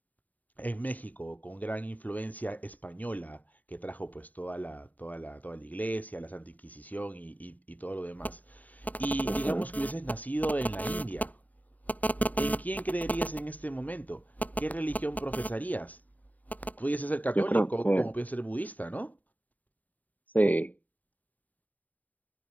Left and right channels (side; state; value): right; late; 0.077 ms